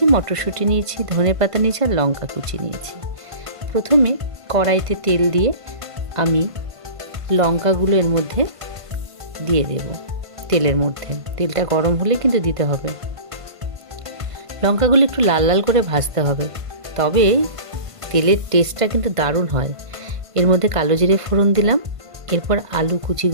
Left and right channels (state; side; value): late; left; 1.5 ms